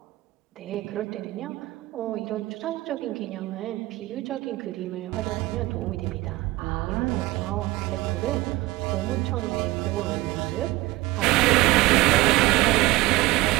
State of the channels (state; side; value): quieter; left; 19.0 dB